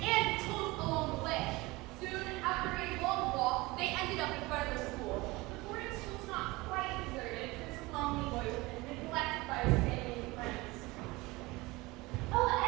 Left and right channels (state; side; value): quieter; left; 22.0 dB